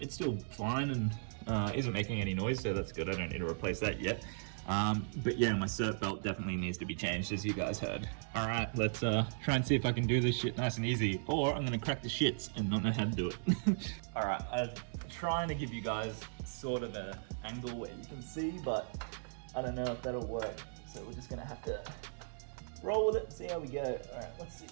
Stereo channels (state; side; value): silent; left; digital silence